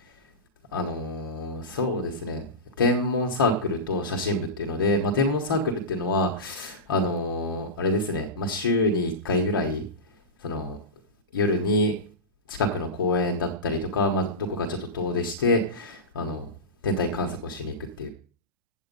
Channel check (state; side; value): normal; both; correlation -0.16